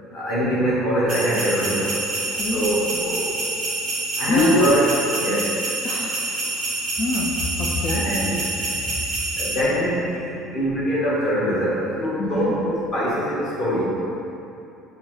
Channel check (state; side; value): normal; both; correlation 0.51